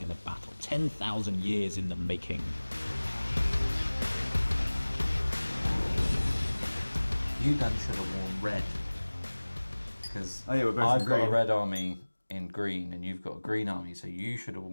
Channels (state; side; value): inverted; both; correlation -1.00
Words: a battle 10,000 years in the making? You done should have worn red. Because we're both I've in got a green. red army in green and you've got a green army, so you should have